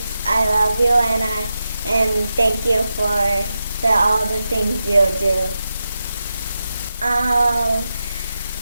I love you, and I and thank you for all the things you do.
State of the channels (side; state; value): both; inverted; correlation -0.90